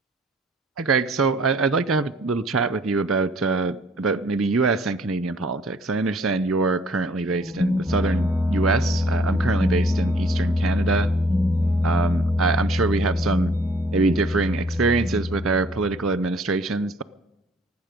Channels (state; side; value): normal; both; correlation 0.58